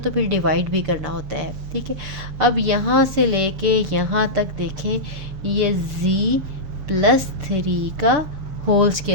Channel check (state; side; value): late; left; 6.7 ms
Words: फिर डिवाइड भी करना होता है, ठीक है। अब यहाँ से लेके यहाँ तक देखें, ये जी +3 का होल